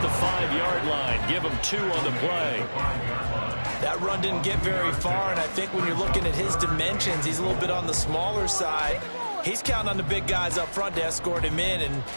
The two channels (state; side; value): inverted; both; correlation -1.00